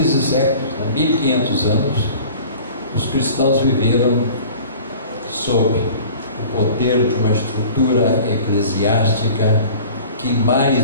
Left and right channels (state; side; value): inverted; both; correlation -0.44